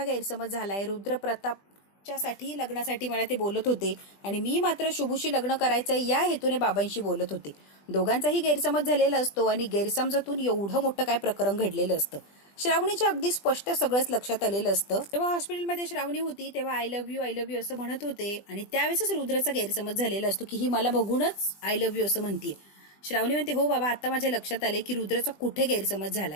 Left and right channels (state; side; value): late; right; 20 ms